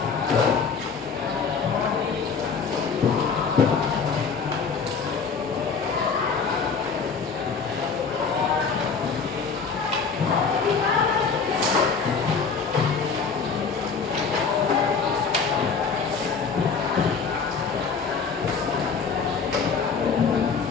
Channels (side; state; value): right; quieter; 5.4 dB